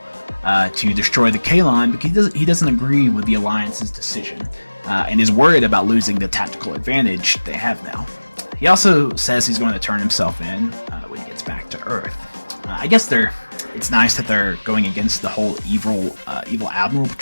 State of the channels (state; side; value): inverted; both; correlation -1.00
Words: to destroy the Kalon, but he doesn't agree with the Alliance's decision, and is worried about losing the tactical advantage they have now. He also says he's going to turn himself in when he gets back to Earth. I guess it's nice that they're going against the whole evil admiral